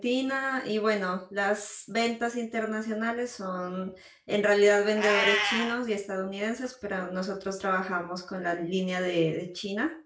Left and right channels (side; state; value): both; identical; correlation 1.00